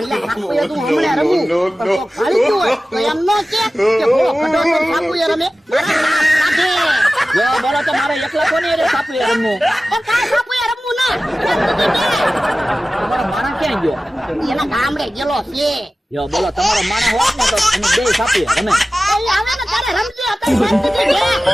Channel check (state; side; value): normal; both; correlation 0.96